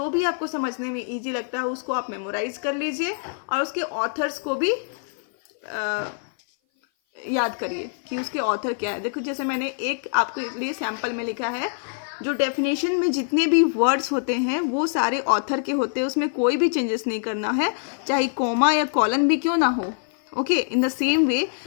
भी आपको समझने में इजी लगता हो, उसको आप मेमोराइज कर लीजिए और उसके ऑथर्स को भी याद करिए कि उसके ऑथर क्या है. देखो, जैसे मैंने एक आपके लिए सैंपल में लिखा है, जो डेफिनेशन में जितने भी वर्ड्स होते हैं वो सारे ऑथर के होते हैं, उसमें कोई भी चेंजेस नहीं करना है, चाहे कोमा या कॉलन भी क्यों ना हो. Okay, in the same way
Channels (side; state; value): right; silent; 57 dB below the other